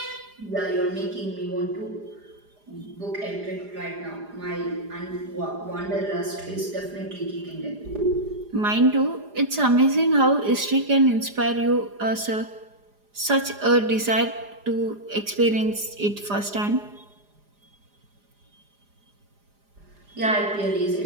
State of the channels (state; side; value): late; left; 4.9 ms